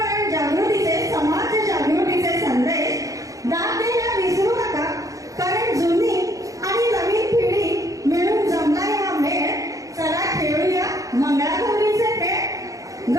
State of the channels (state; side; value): late; left; 0.16 ms